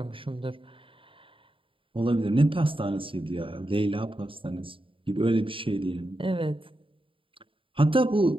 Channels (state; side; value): late; left; 0.25 ms